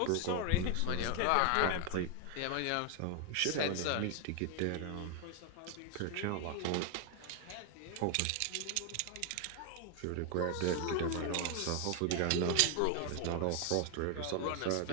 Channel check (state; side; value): different; both; correlation 0.01